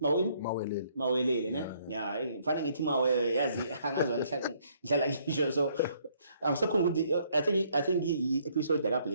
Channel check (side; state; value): both; inverted; correlation -0.66